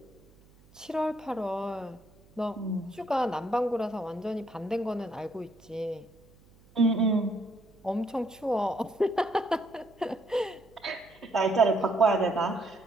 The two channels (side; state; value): right; noise; hum, 28 dB below the sound